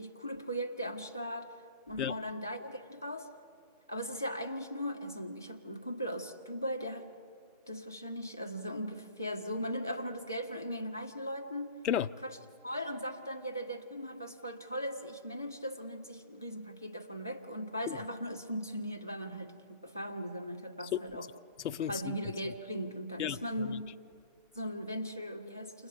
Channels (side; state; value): both; inverted; correlation -0.53